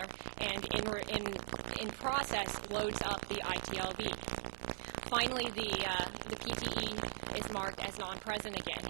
and in process loads up the ITLB. Finally, the PTE is marked as non-present again,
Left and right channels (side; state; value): left; silent; 51 dB below the other